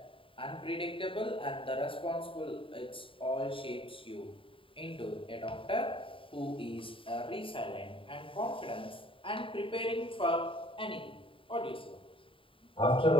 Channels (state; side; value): late; right; 0.25 ms